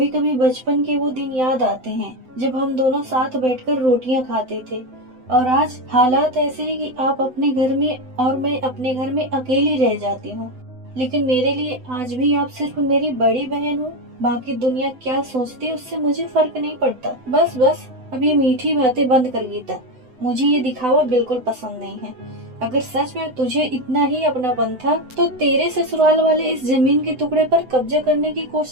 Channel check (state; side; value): late; left; 7.9 ms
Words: कभी बचपन के वो दिन याद आते हैं जब हम दोनों साथ बैठकर रोटियां खाते थे, और आज हालात ऐसे हैं कि आप अपने घर में और मैं अपने घर में अकेली रह जाती हूँ। लेकिन मेरे लिए आज भी आप सिर्फ मेरी बड़ी बहन हो। बाकी दुनिया क्या सोचती है उससे मुझे फर्क नहीं पड़ता। बस बस, अब ये मीठी बातें बंद कर गीता। मुझे ये दिखावा बिल्कुल पसंद नहीं है। अगर सच में तुझे इतना ही अपनापन था तो तेरे ससुराल वाले इस जमीन के टुकड़े पर कब्जा करने की